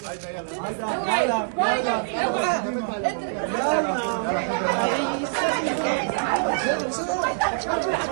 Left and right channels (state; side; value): silent; left; digital silence